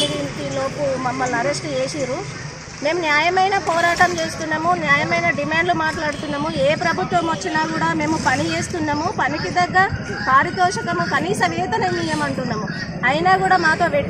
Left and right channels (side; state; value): both; identical; correlation 1.00